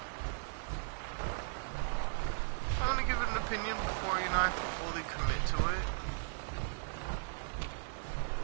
I want to give it an opinion before, you know, I fully commit to it.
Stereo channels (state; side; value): silent; left; digital silence